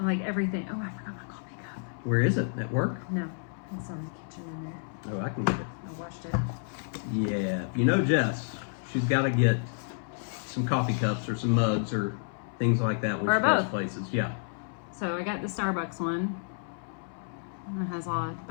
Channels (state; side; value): silent; right; 58 dB below the other